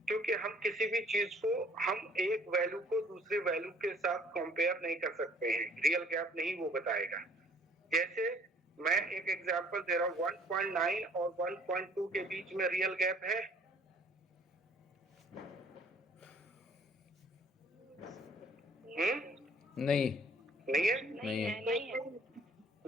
क्योंकि हम किसी भी चीज को हम एक वैल्यू को दूसरे वैल्यू के साथ कंपेयर नहीं कर सकते हैं। रियल गैप नहीं वो बताएगा। जैसे मैं एक एग्जांपल दे रहा हूँ, 1.9 और 1.2 के बीच में रियल गैप है? नहीं नहीं है? नहीं है।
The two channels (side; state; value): both; normal; correlation 0.57